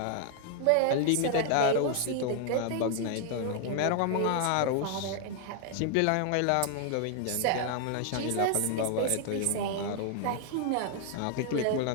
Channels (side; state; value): both; different; correlation 0.00